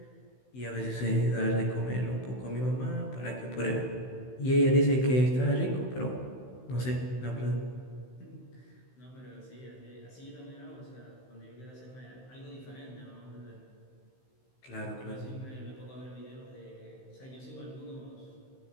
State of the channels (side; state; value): right; late; 16 ms